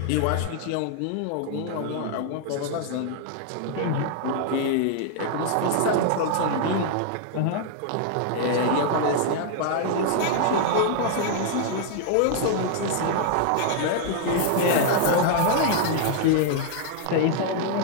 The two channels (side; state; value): both; different; correlation 0.00